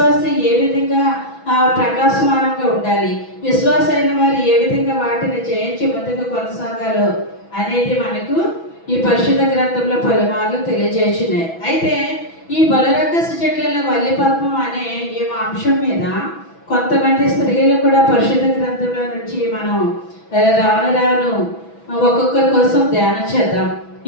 ఏ విధంగా ప్రకాశమానంగా ఉండాలి, విశ్వాసైన వారు ఏ విధంగా వాటిని జయించి ముందుకు కొనసాగాలో అనేది మనకు ఈ పరిశుద్ధ గ్రంథంలో పలుమార్లు తెలియజేస్తున్నాయి. అయితే ఈ బలిరక్కస చెట్లలో వల్లి పద్మం అనే ఈ అంశం మీద కొంతమంది స్త్రీలు కూడా పరిశుద్ధ గ్రంథంలో నుంచి మనం రాను ఒక్కొక్కరి కోసం ధ్యానం చేద్దాం.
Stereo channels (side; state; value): right; late; 6.1 ms